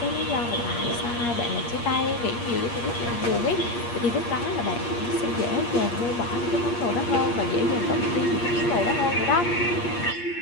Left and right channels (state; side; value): late; right; 8.5 ms